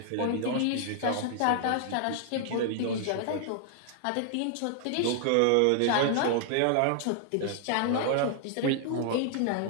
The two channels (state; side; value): different; both; correlation 0.00